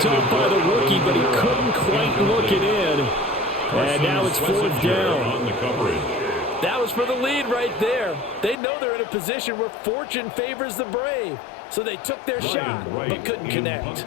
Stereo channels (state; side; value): drops out; right; at 8.6 s